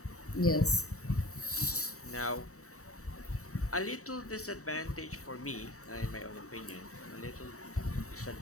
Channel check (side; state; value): right; late; 0.65 ms